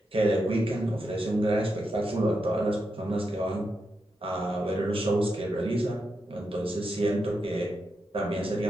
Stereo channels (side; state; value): both; normal; correlation 0.85